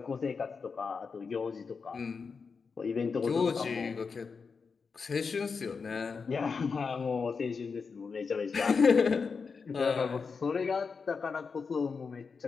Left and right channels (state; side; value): quieter; right; 5.2 dB